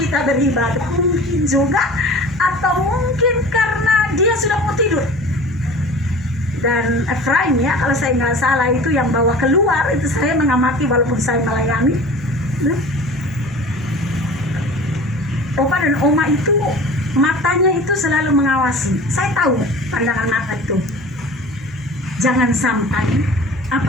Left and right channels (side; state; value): both; normal; correlation 0.41